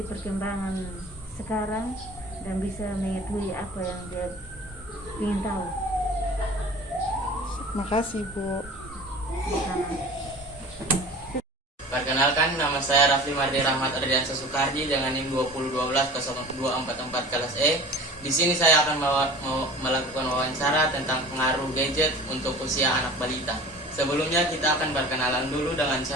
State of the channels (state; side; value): normal; both; correlation 0.40